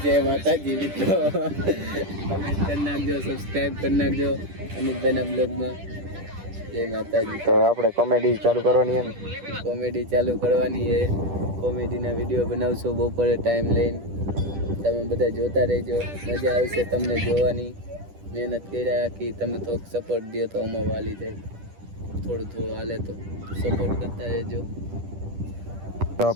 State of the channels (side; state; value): left; late; 10 ms